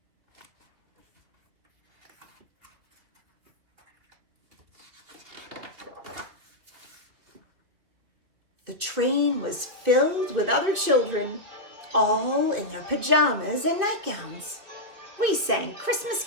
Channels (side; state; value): left; late; 3.0 ms